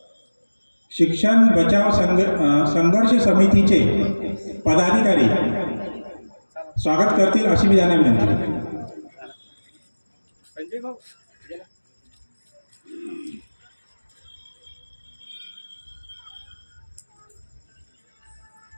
शिक्षण बचाव संघर्ष समितीचे पदाधिकारी स्वागत करतील अशी मी त्यांना विनंती करतो. संजय भाऊ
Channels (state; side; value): inverted; both; correlation -1.00